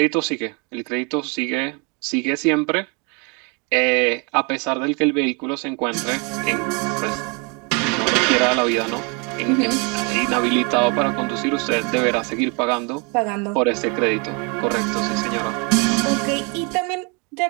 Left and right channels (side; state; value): left; quieter; 32.6 dB